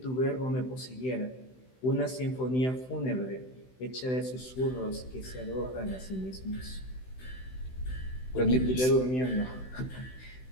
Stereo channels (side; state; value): right; late; 16 ms